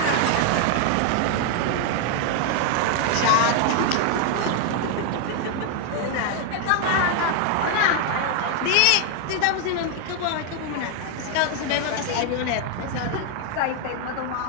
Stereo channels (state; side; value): different; both; correlation 0.01